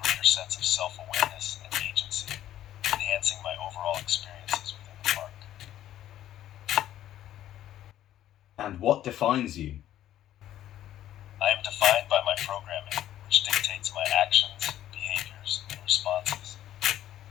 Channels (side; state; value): right; quieter; 12.3 dB